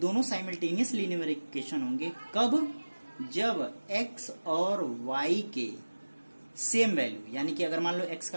साइमल्टेनियस लीनियर इक्वेशन होंगे कब, जब x और y के सेम वैल्यू, यानी कि अगर मान लो x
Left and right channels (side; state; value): both; inverted; correlation -1.00